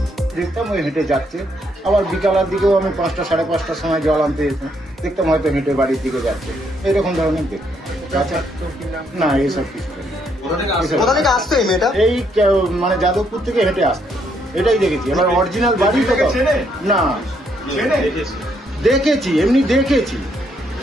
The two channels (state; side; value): normal; both; correlation 0.73